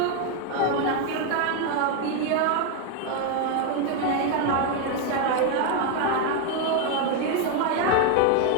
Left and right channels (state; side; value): different; both; correlation 0.01